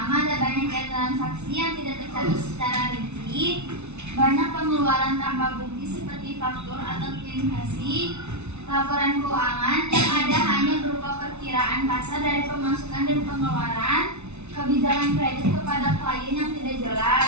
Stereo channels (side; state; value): left; late; 0.81 ms